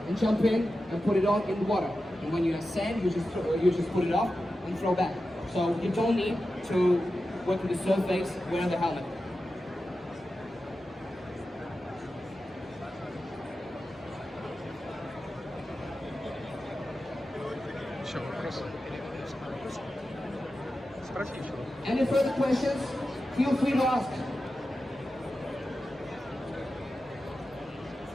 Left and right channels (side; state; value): both; normal; correlation 0.92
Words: jump in and put it on in the water. And when you ascend, you just put it off and throw back. So you don't need to work with the surface wearing the helmet. Any further questions? Feel free to ask.